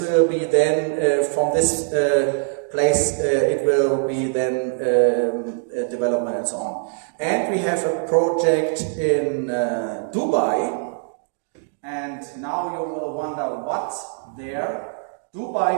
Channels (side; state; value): left; silent; digital silence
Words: will be then from this place, it will be then development and so on. And we have a project in Dubai. And now you will wonder what's there.